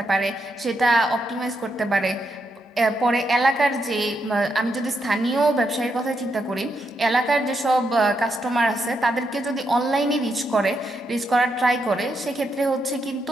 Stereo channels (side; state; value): both; normal; correlation 0.81